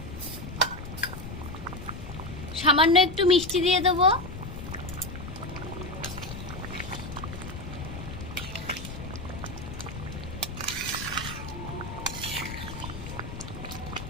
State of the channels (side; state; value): left; noise; rumble, 9 dB below the sound